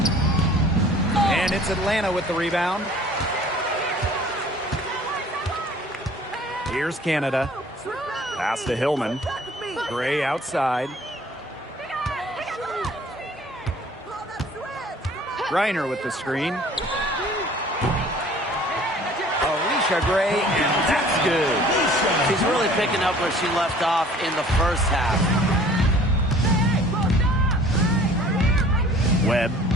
And it's Atlanta with the rebound. Here's Canada. Pass to Hillman. Gray outside. Griner with the screen. Alicia Gray, and that's good. She's really picking up where she left off in the first half. Webb,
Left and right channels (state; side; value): normal; both; correlation 0.51